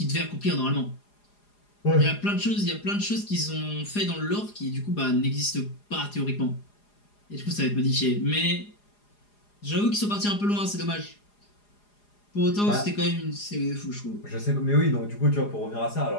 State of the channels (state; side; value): late; right; 4.9 ms